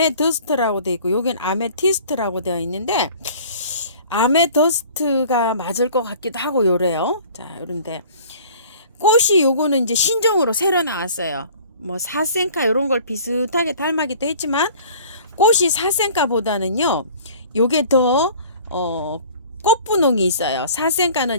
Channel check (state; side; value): inverted; both; correlation -0.48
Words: 되어 있고 여긴 아메티스트라고 되어 있는데 아메더스트가 맞을 것 같기도 하고 요래요. 자, 요런데 꽃이 요거는 이제 신종으로 새로 나왔어요. 뭐 사센카 이런 걸 비슷하게 닮아기도 했지만 꽃이 사센카보다는요 요게 더 꽃분홍이 있어요.